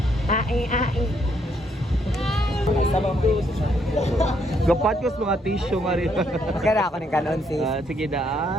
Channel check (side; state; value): both; normal; correlation 0.72